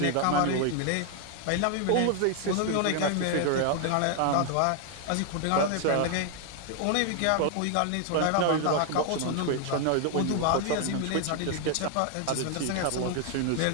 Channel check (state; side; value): different; both; correlation 0.00